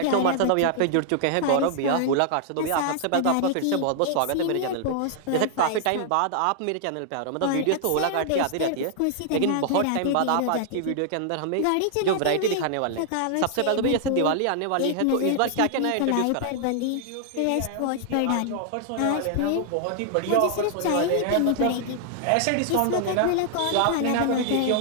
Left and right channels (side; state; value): both; different; correlation 0.00